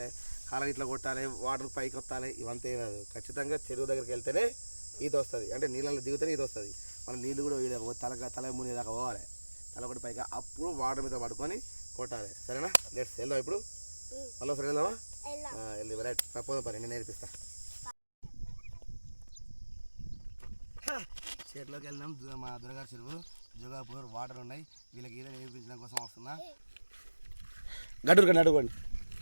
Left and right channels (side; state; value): both; inverted; correlation -1.00